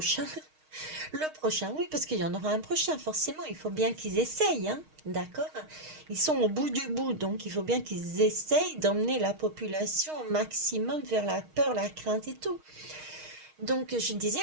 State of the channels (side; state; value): left; late; 6.4 ms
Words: oui, parce qu'il y en aura un prochain, forcément, il faut bien qu'ils essayent, hein, d'accord? Ils sont au bout du bout, donc il faut bien qu'ils essayent d'emmener la population au maximum vers la peur, la crainte et tout. Donc, je